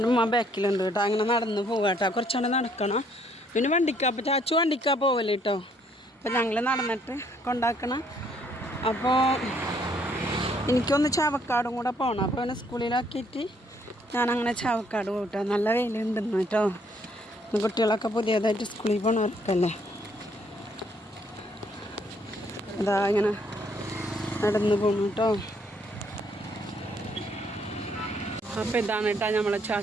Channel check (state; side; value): normal; both; correlation 0.67